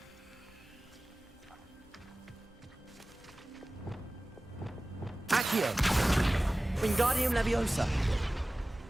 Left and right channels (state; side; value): normal; both; correlation 0.97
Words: Accio! Wingardium Leviosa!